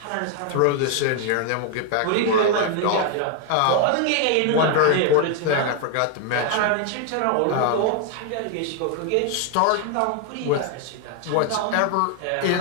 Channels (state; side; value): different; both; correlation 0.00